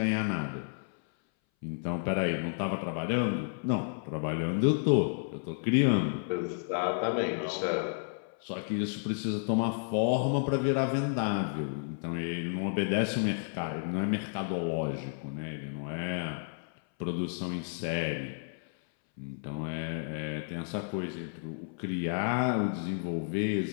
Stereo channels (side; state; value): right; silent; 57 dB below the other